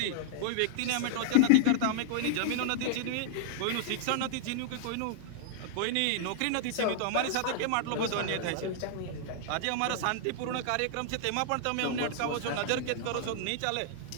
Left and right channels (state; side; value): different; both; correlation -0.01